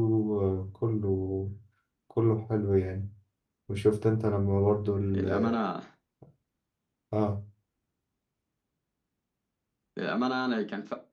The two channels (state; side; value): identical; both; correlation 1.00